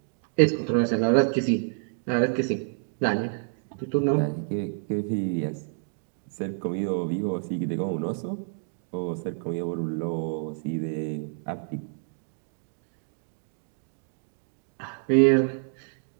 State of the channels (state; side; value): silent; left; digital silence